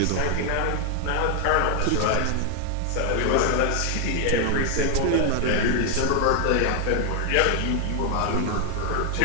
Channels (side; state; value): both; different; correlation 0.00